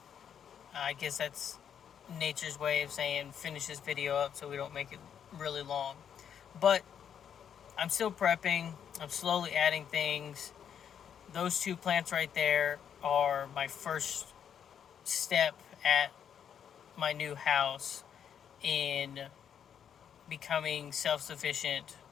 I guess that's nature's way of saying finish this video up so we don't make it really long. But I'm still prepping. I'm slowly adding things. Those two plants right there are my first step at my new house in becoming self-sufficient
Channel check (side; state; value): right; quieter; 8.4 dB